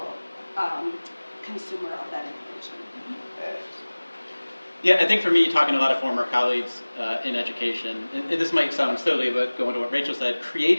consumer of that information. Yeah, I think for me, talking to a lot of former colleagues in education, and this might sound silly, but going to what Rachel said,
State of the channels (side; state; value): both; inverted; correlation -1.00